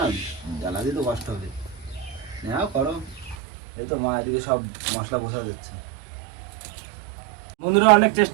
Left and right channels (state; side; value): drops out; left; at 3.4 s